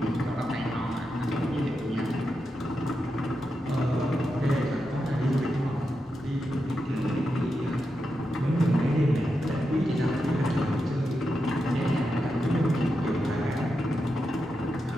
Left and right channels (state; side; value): normal; both; correlation 0.87